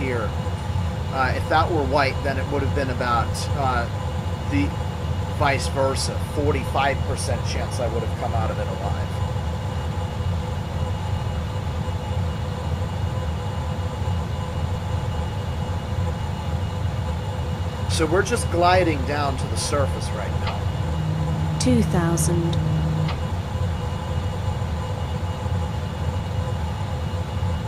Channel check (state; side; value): identical; both; correlation 1.00